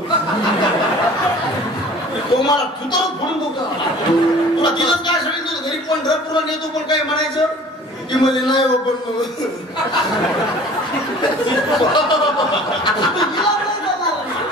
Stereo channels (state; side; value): normal; both; correlation 0.47